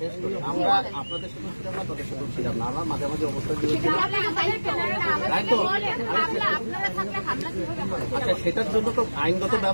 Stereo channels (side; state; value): both; inverted; correlation -1.00